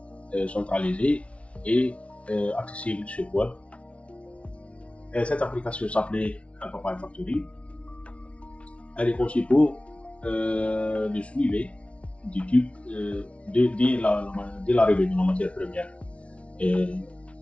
centralisée et accessible sur web. Cette application s'appelait Alphabet Factory. Elle est conçue pour le suivi du type dès l'arrivée de la matière première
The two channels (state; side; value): late; right; 0.062 ms